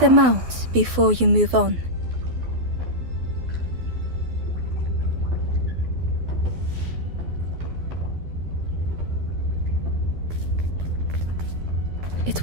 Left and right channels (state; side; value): late; left; 12 ms